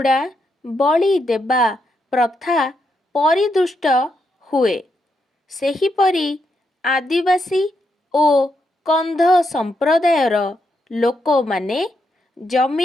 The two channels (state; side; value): normal; both; correlation 0.81